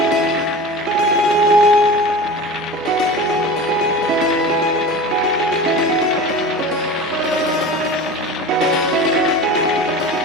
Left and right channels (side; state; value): both; normal; correlation 0.34